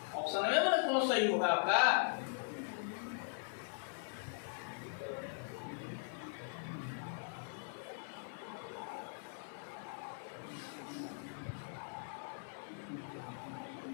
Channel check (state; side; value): silent; right; 51 dB below the other